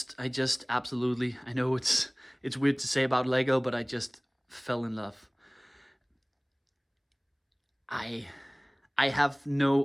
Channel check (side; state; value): both; identical; correlation 1.00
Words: absolutely, I know it's weird to say about Lego, but I just fell in love. I have no